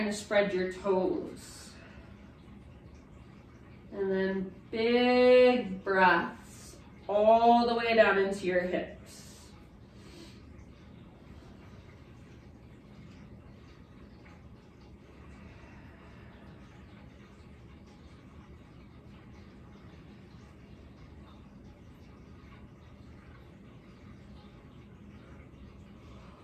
to spread your toes. And then big breaths all the way down into your hips.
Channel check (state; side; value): identical; both; correlation 1.00